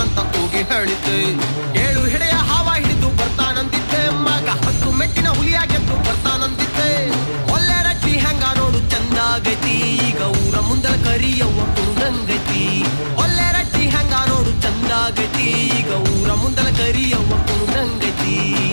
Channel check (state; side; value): inverted; both; correlation -1.00